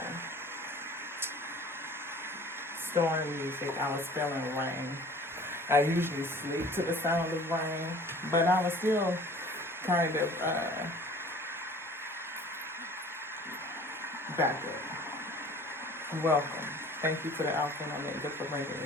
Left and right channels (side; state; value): both; normal; correlation 0.47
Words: storm music. I was feeling rain. I usually sleep to the sound of rain, but I was still kind of back up. Welcome. Thank you to the Alpha and Omega for bringing